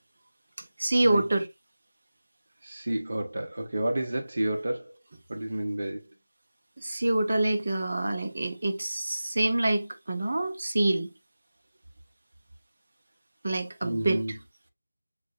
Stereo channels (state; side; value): inverted; both; correlation -0.96